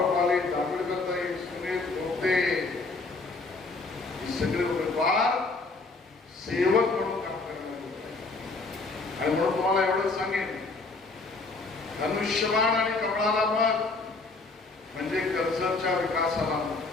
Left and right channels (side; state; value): right; quieter; 3.7 dB